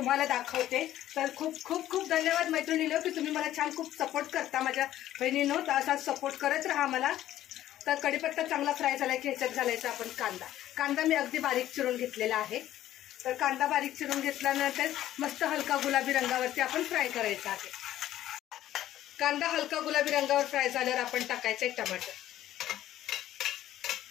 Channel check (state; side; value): quieter; right; 13.1 dB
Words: दाखवते। तर खूप खूप खूप धन्यवाद मैत्रिणींनो की तुम्ही मला छान खूप सपोर्ट करता। माझ्या बहिणींनो तर असा सपोर्ट करत राहा मला। तर कढीपत्ता चांगला फ्राय झाला की ह्याच्यात घालायचा आपण कांदा मी अगदी बारीक चिरून घेतलेला आहे। तर कांदा बारीक चिरून घेतल्यानंतर मस्त हलका गुलाबी रंगावरती आपण फ्राय करायचा आहे। कांदा हलका गुलाबी रंगावर फ्राय झाल्यावर आपण टाकायचे टमाटर।